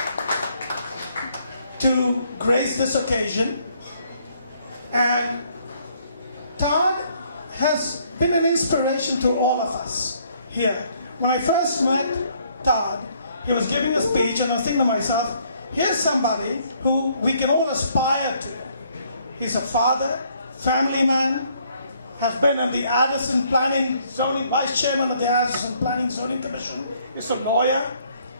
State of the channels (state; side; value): inverted; both; correlation -0.66